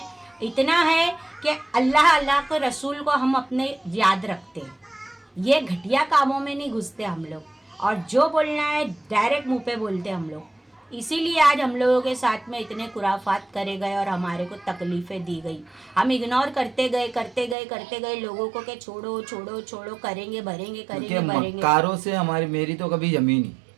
इतना है कि अल्लाह के रसूल को हम अपने याद रखते हैं। ये घटिया कामों में नहीं घुसते हम लोग, और जो बोलना है डायरेक्ट मुंह पे बोलते हम लोग। इसीलिए आज हम लोगों के साथ में इतने खुराफात करे गए और हमारे को तकलीफ़ें दी गई। हम इग्नोर करते गए लोगों को, कि छोड़ो छोड़ो छोड़ो, करेंगे भरेंगे, करेंगे भरेंगे। मक्कारों से मेरी तो कभी जमी नहीं।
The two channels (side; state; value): left; drops out; at 17.6 s